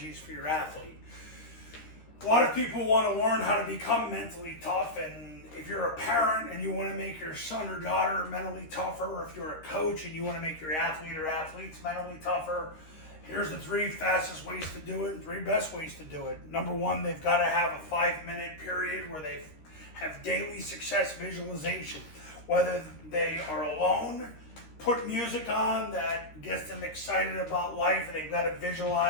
for your athlete. A lot of people want to learn how to become mentally tough, and if you're a parent and you want to make your son or daughter mentally tougher, or if you're a coach and you want to make your athlete or athletes mentally tougher, here's the 3 fastest ways to do it and 3 best ways to do it. Number 1, they've got to have a 5-minute period where they have daily success visualization. Whether they are alone, put music on that gets them excited about life, and they've got to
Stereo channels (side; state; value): right; late; 13 ms